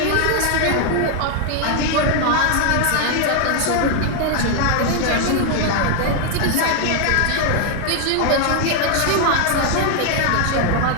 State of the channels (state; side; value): different; both; correlation 0.00